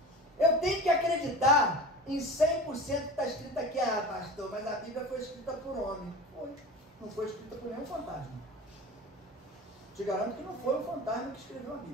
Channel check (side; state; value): both; normal; correlation 0.34